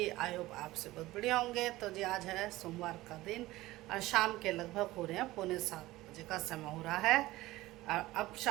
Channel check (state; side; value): quieter; left; 17.8 dB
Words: आई होप आप से बहुत बढ़िया होंगे। तो जी आज है सोमवार का दिन और शाम के लगभग हो रहे हैं 6:45 का समय हो रहा है। और अब